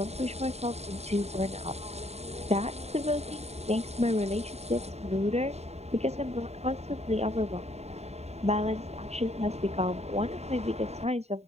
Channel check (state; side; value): late; left; 0.31 ms